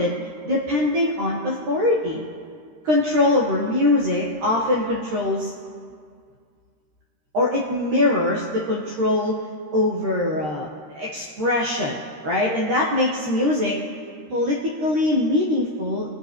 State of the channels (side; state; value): left; late; 13 ms